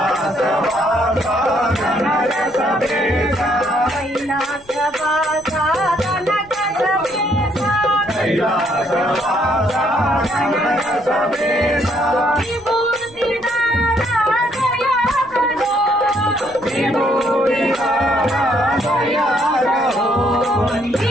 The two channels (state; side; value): noise; left; rumble, 26 dB below the sound